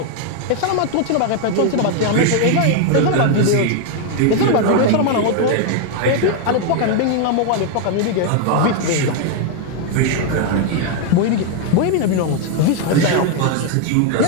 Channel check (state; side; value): different; both; correlation 0.01